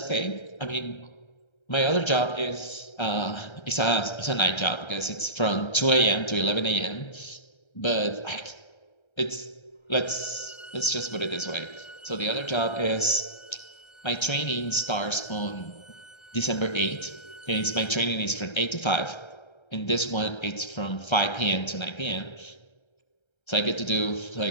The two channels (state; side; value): late; right; 1.3 ms